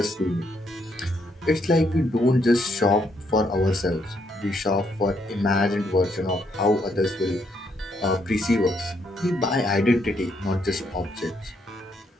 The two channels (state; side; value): normal; both; correlation 0.74